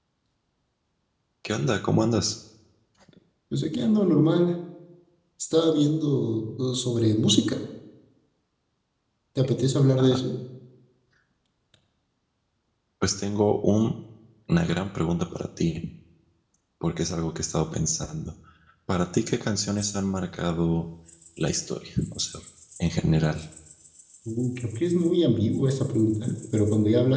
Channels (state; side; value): identical; both; correlation 1.00